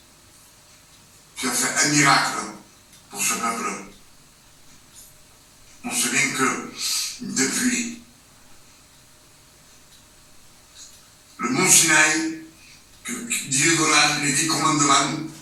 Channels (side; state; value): both; identical; correlation 1.00